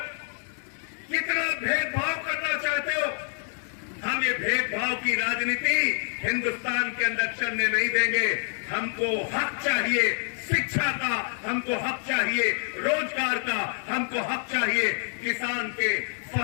कितना भेदभाव करना चाहते हो। हम ये भेदभाव की राजनीति हिंदुस्तान के अंदर चलने नहीं देंगे। हमको हक चाहिए शिक्षा का, हमको हक चाहिए रोजगार का, हमको हक चाहिए किसान के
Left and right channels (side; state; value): right; silent; 60 dB below the other